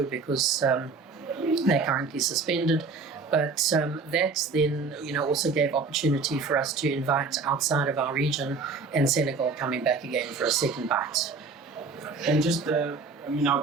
because they're currently suspended. But that then, also gave opportunity for us to invite outside of our region, and Senegal coming back again for a second bite. And just,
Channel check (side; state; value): left; quieter; 4.4 dB